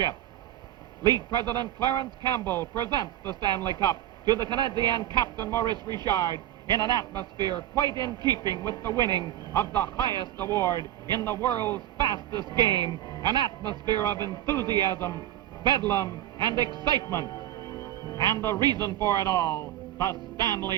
League President Clarence Campbell presents the Stanley Cup to the Canadien captain Maurice Richard in an atmosphere quite in keeping with the winning of the highest award in the world's fastest game, an atmosphere of enthusiasm, bedlam, and excitement. And the reason for it all, the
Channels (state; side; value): quieter; left; 13.0 dB